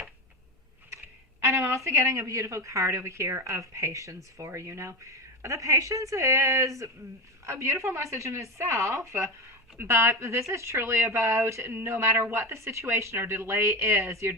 I'm also getting a beautiful card over here of patience for you. Now, the patience is a beautiful message in itself, but this is truly about no matter what the situation or delay is, your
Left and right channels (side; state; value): both; normal; correlation 0.20